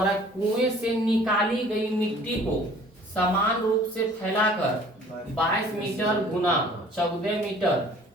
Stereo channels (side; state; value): both; normal; correlation 0.51